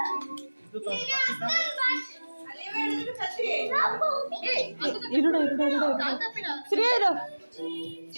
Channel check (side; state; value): both; inverted; correlation -1.00